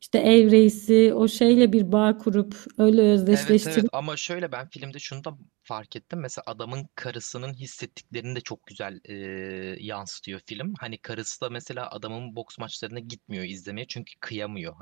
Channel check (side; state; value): left; quieter; 25.5 dB